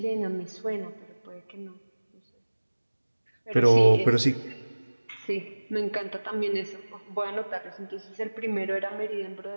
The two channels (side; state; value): both; inverted; correlation -1.00